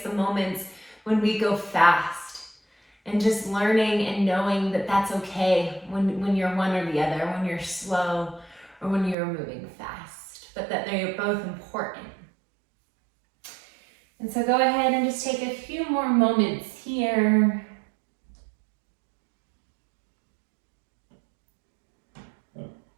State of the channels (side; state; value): left; drops out; at 9.2 s